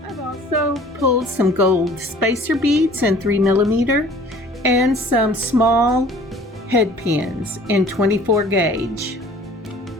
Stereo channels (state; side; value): normal; both; correlation 0.50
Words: I've also pulled some gold spacer beads in 3mm and some small head pins in 24 gauge.